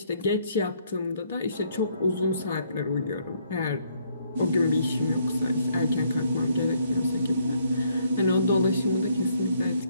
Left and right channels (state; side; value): inverted; both; correlation -0.68